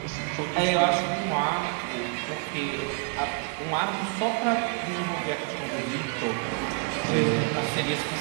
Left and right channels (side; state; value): left; quieter; 34.3 dB